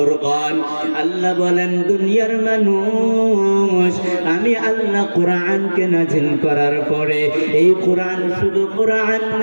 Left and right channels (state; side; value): inverted; both; correlation -1.00